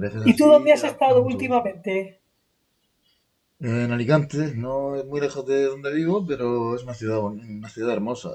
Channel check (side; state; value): both; identical; correlation 1.00